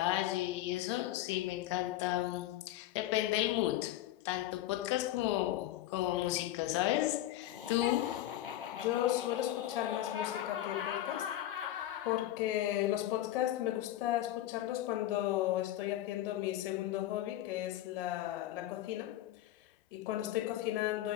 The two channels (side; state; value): right; quieter; 14.0 dB